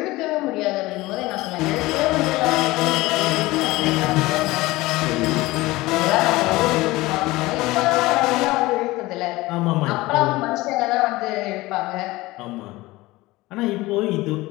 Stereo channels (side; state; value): right; quieter; 19.7 dB